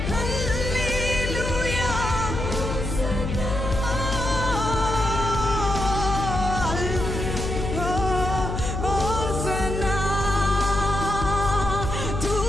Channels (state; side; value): noise; left; hum, 3 dB below the sound